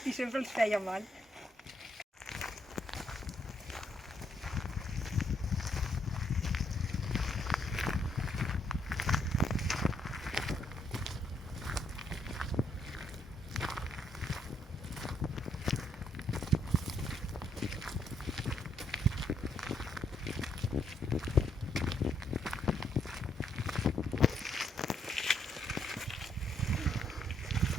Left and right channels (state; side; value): normal; both; correlation 0.73